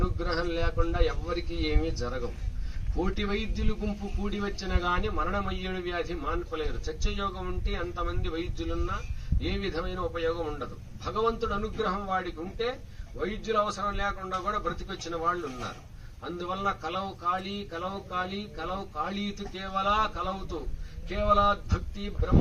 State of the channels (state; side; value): identical; both; correlation 1.00